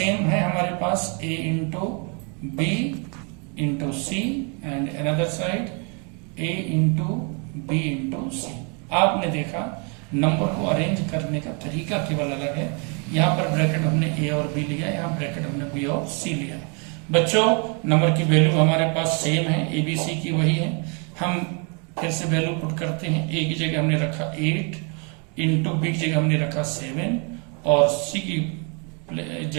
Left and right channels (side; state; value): left; quieter; 35.6 dB